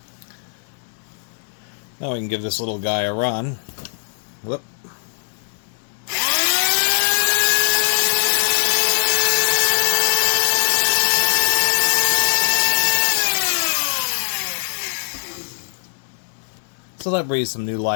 Now we can give this little guy a run. Whoop. So that breathes some new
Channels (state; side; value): silent; right; 65 dB below the other